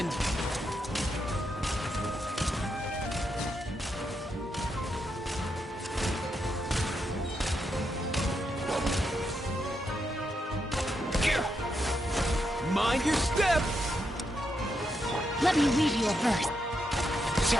Mind your step! Let me read you a verse.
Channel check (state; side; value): normal; both; correlation 0.82